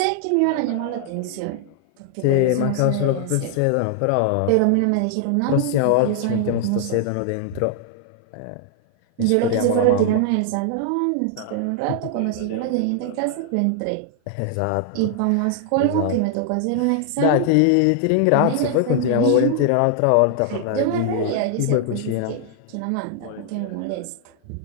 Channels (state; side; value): different; both; correlation 0.00